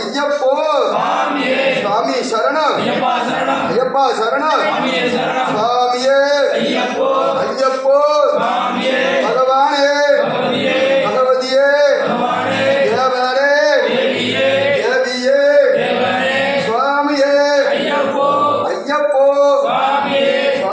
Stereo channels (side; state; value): both; identical; correlation 1.00